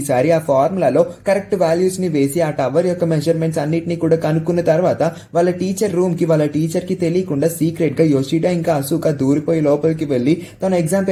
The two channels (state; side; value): identical; both; correlation 1.00